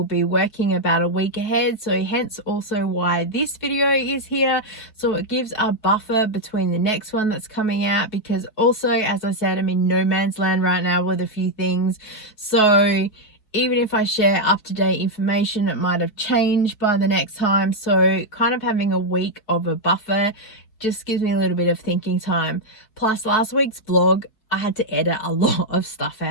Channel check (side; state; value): right; late; 4.5 ms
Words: be working about a week ahead, so hence also why this video is here. So it gives a buffer between the next one that's coming out, because also, as I said, I'm in no man's land right now with a few things. So even if I share up-to-date information, it might have changed by the next time. So kind of having a week of a buffer just gives me a little bit of thinking time. Plus last week's vlog, I had to edit a lot of stuff